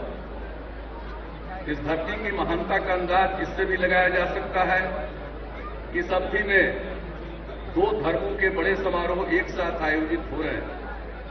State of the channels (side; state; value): both; identical; correlation 1.00